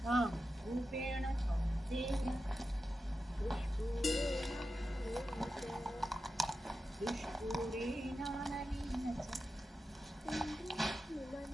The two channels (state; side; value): normal; both; correlation 0.91